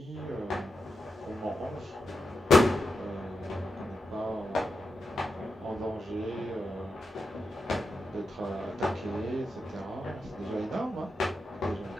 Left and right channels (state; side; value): normal; both; correlation 0.87